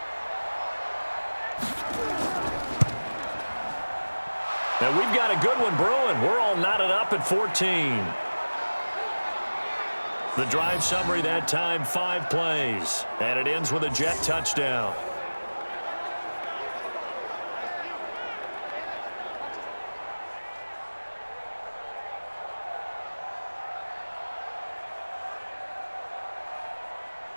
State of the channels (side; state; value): both; inverted; correlation -1.00